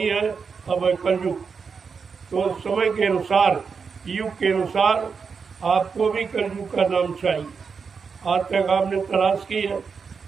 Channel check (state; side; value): quieter; left; 5.6 dB